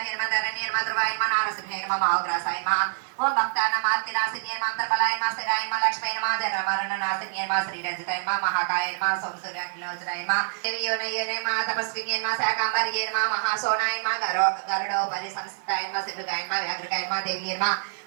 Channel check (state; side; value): silent; left; 61 dB below the other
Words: ఓం భక్తానామార్తినాశిన్యే మంత్రబలాయ మా స్థిరాయ మా లక్ష్మీయ మా జనమరణనాశిన్యే మా శ్రీరజితాయ మా మహాకాయ మా సోమసూర్యాఖిలోచనాయ మా దేవియోనయ్యనే మా తపస్విన్యే మా శాకాంబర్యే మా మహాసోనాయ మా గరుడోపరి సంస్థాయ మా సిద్ధుగాయ మా వ్యాఘ్రకాయ మా దేవియే మా